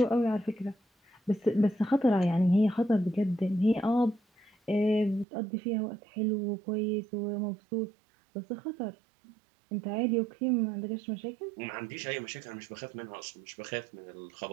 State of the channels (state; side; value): drops out; left; at 5.2 s